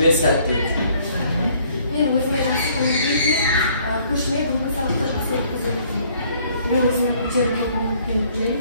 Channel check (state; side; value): inverted; both; correlation -0.62